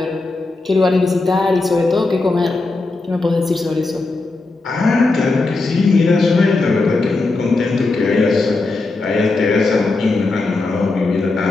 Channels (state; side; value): quieter; right; 3.4 dB